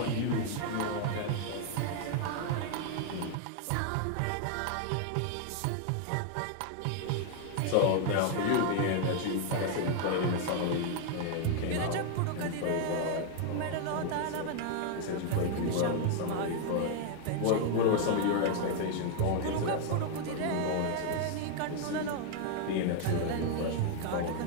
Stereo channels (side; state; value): both; different; correlation 0.00